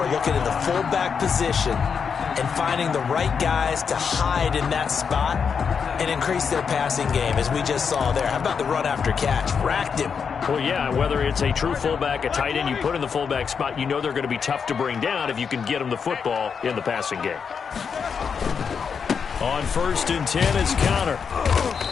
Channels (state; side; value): quieter; right; 6.3 dB